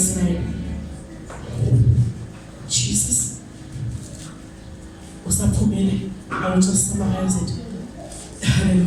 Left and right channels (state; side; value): identical; both; correlation 1.00